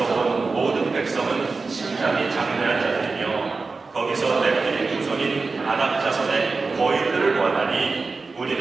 온 모든 백성은 심장이 장대한 자들이며 거기서 넷들이 후손인 아낙 자손의 거인들을 원하니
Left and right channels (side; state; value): left; quieter; 4.1 dB